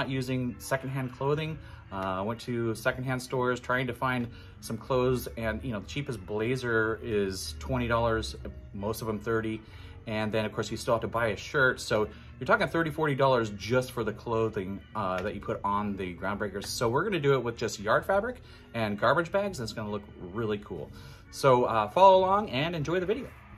using secondhand clothing. I went to secondhand stores trying to find some clothes, and the cheapest blazer is $20, most of them $30. And then of course you still have to buy a shirt. So you're talking $30, $40 just for the clothing that you put on the Groundbreakers. So we're gonna do it with just yard fabric and garbage bags, and it's gonna look really cool. So follow along and enjoy the video.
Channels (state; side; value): identical; both; correlation 1.00